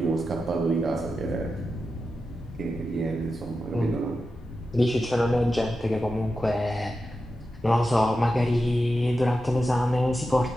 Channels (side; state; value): both; normal; correlation 0.91